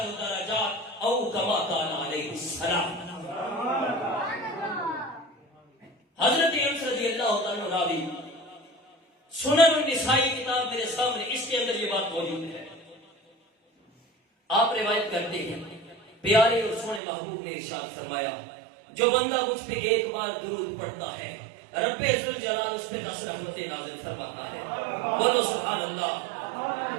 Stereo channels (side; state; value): left; drops out; at 17.0 s